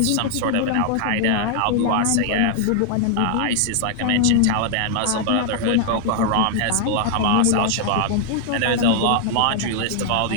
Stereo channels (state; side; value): different; both; correlation 0.00